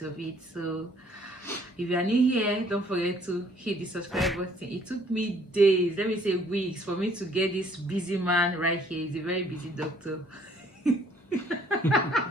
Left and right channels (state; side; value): normal; both; correlation 0.61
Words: of it. So if you are new here, don't forget to hit the subscribe button. It took me days, let me say weeks, for me to get this busy man right here. He's a very busy doctor.